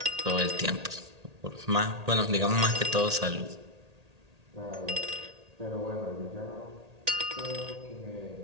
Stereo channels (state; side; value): late; left; 1.8 ms